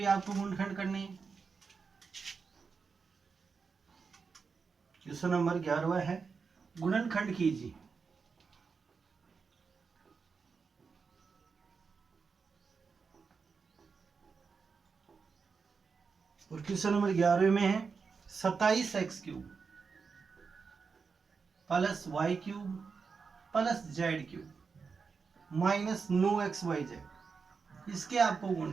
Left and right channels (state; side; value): quieter; left; 5.2 dB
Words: आपको गुणनखंड करने हैं। क्वेश्चन नंबर 11 है गुणनखंड कीजिए। और क्वेश्चन नंबर 11 में है 27x cube plus y cube plus z cube minus 9xyz, इसके आपको